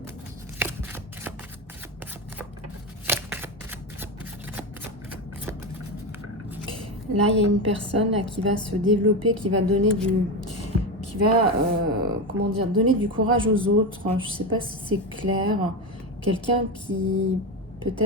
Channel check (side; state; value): both; normal; correlation 0.16